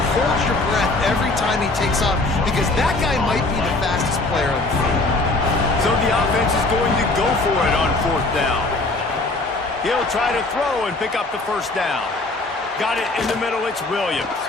hold your breath every time he takes off because that guy might be the fastest player on the field. So the offense is going to go for it on 4th down. He'll try to throw and pick up the first down. Got it in the middle. It's Williams.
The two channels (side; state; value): right; quieter; 3.1 dB